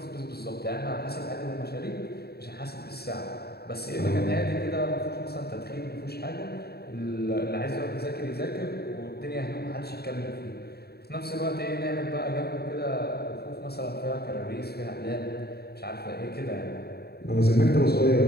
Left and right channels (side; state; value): right; late; 0.46 ms